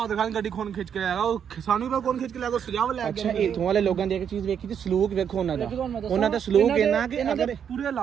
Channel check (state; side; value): quieter; left; 8.1 dB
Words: ਖਾਨ ਗੱਡੀ ਖੋਨ ਖਿੱਚ ਕੇ ਆਏਗਾ, ਉਹ ਸਾਨੂੰ ਵੀ ਕੌਣ ਖਿੱਚ ਕੇ ਲੈ ਗਿਆ, ਸਜਾਵ ਲੈ ਅੱਛਾ ਗਿਆ। ਇਥੋਂ ਵਾਲੇ ਲੋਕਾਂ ਦੀ ਇੱਕ ਚੀਜ਼ ਵੇਖੀ ਤੇ ਸਲੂਕ ਵੇਖੋ ਉਹਨਾਂ ਦਾ ਸਲੂਕ ਇਹਨਾਂ ਕਿ ਅਗਰ ਪੂਰੇ